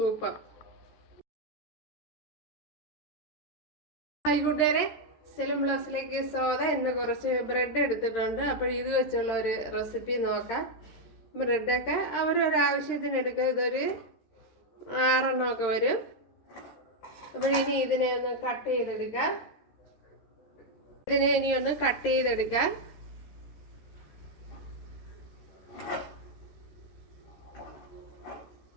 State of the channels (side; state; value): right; late; 13 ms